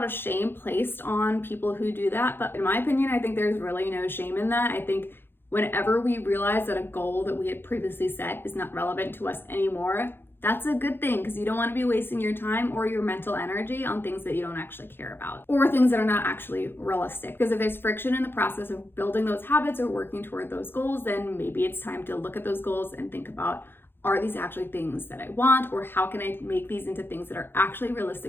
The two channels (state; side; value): late; right; 0.10 ms